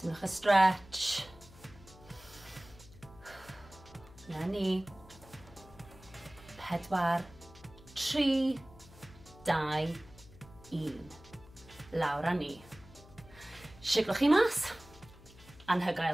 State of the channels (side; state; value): left; noise; hum, 21 dB below the sound